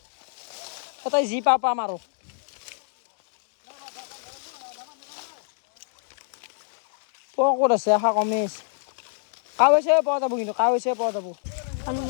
এটাই যি পাম আৰু ক'ত আছে আশা কমেই কাৱৈছে পোৱা যাব কিন্তু কাৱৈছে পোৱা যাব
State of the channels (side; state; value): right; silent; digital silence